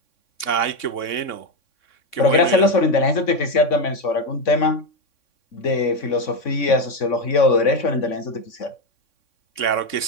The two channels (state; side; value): late; right; 3.6 ms